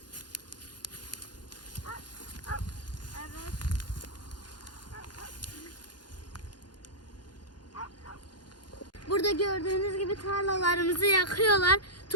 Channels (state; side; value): late; right; 0.70 ms